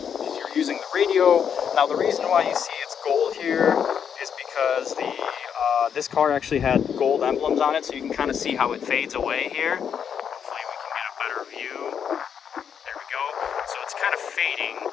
you're using the radio. Now the reason why you see it's gold here is because this car actually had gold emblems on it, so you can kind of see how it fades away here. Hopefully we can get a better view. There we go. So it's kind of fading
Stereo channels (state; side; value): quieter; right; 7.8 dB